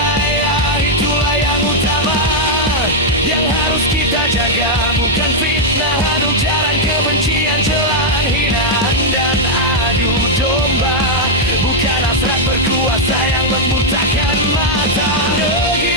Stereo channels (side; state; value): both; normal; correlation -0.03